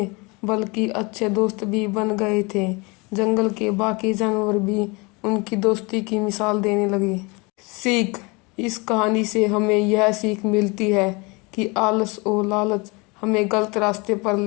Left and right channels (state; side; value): quieter; right; 27.4 dB